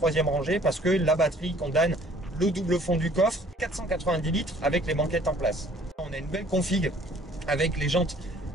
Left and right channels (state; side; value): normal; both; correlation 0.56